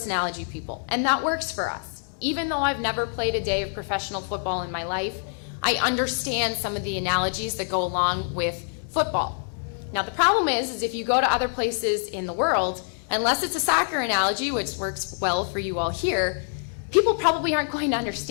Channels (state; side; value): silent; right; 61 dB below the other